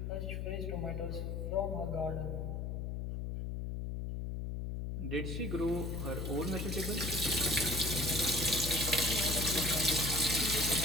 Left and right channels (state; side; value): noise; left; hum, 3 dB below the sound